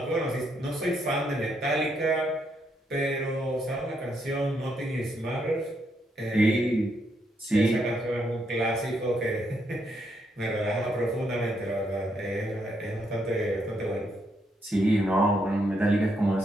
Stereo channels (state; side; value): normal; both; correlation 0.77